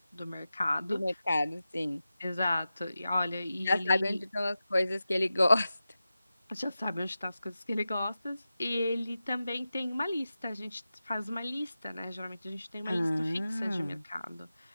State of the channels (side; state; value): both; inverted; correlation -0.93